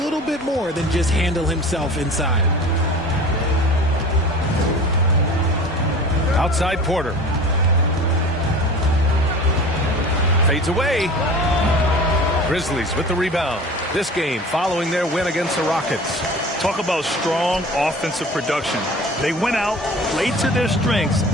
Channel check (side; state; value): both; normal; correlation 0.40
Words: little bit more than just handle himself inside. Outside Porter. Fades away. Grizzlies with the rebound. This game following their win against the Rockets. Talk about strong offensive production. They went out, played to their strengths,